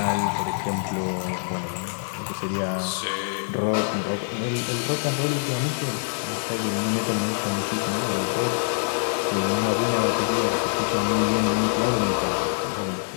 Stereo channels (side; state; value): right; silent; digital silence